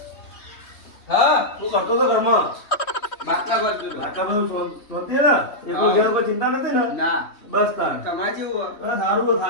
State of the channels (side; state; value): right; late; 3.1 ms